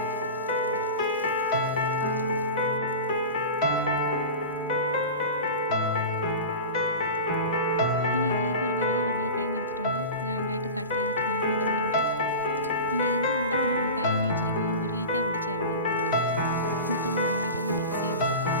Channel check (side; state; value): both; inverted; correlation -0.30